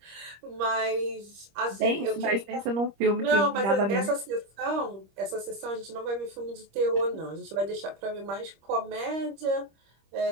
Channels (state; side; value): late; left; 25 ms